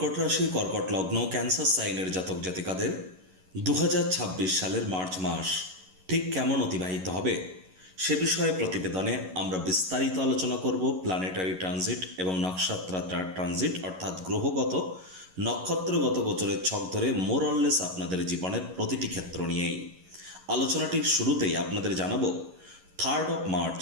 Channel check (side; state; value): left; late; 11 ms